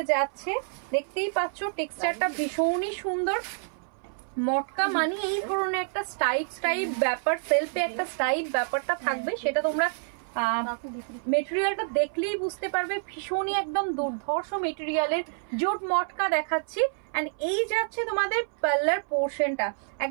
যাচ্ছে, দেখতেই পাচ্ছ টেক্সচারটা ভীষণই সুন্দর। মটকা মানে এই ধরনের একটা স্টাইপ ব্যাপার, সেলফে একটা স্টাইপ ব্যাপারটা থাকবে, সেটা তোমরা মেটেরিয়ালটা দেখলেই বুঝতে পারবে। ভীষণই একদম দুর্ধর্ষ মেটেরিয়ালের জুট মটকা দেখাচ্ছি। এন্ড এই যাচ্ছে তোমাদের পাল্লার পোর্শনটা,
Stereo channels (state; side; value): silent; left; 59 dB below the other